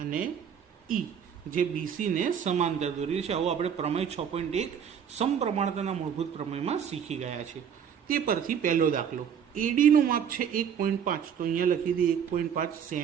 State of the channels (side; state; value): left; quieter; 8.0 dB